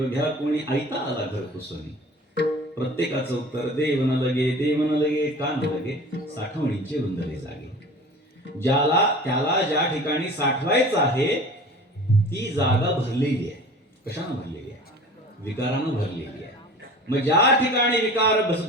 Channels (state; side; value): normal; both; correlation 0.41